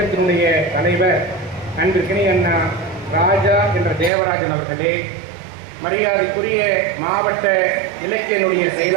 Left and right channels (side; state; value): left; drops out; at 4.1 s